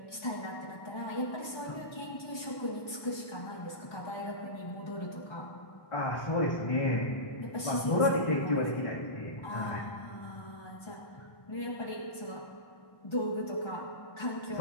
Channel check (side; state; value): right; late; 1.2 ms